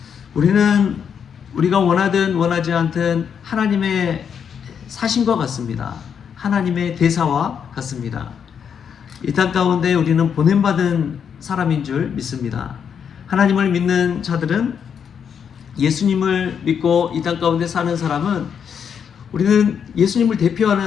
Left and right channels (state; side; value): quieter; right; 7.5 dB